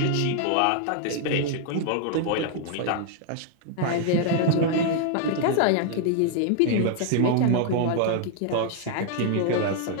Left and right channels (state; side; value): different; both; correlation 0.00